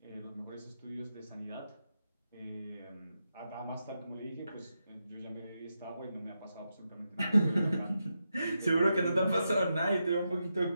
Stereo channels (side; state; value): both; inverted; correlation -0.86